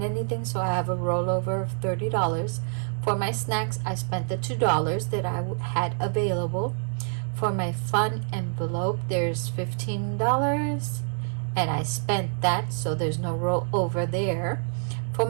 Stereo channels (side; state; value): left; silent; 60 dB below the other